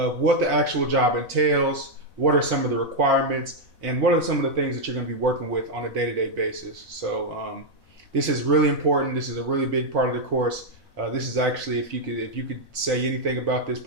what the actual job entails, what are some of the requirements, and what are some of the things that you're going to be working with on a day-to-day basis. So, this is really important. This is a really big part of the course. This is actually, if you could say anything about this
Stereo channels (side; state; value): left; late; 4.0 ms